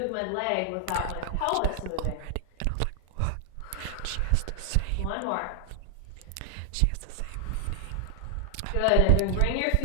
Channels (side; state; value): both; different; correlation 0.00